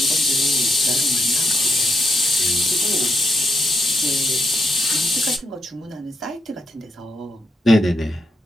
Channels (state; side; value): normal; both; correlation 0.81